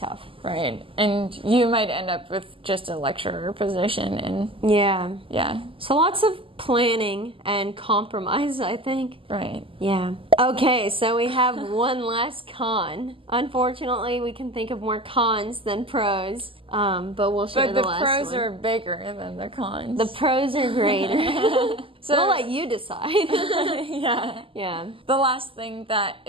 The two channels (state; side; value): late; left; 0.26 ms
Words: Right. And you might end up with just a lecturer position and yeah. So lots of planning and compromise, I think. Right. Yeah. Okay, so we have one last con. Unfortunately, we can think of more cons than pros, but we'll share the last one. But the pros are bigger than the cons. The pros are greater. So we'll let you decide. Yeah. The last thing that